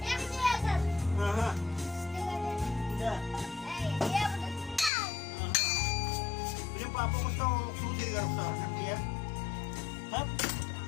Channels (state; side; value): drops out; right; at 4.9 s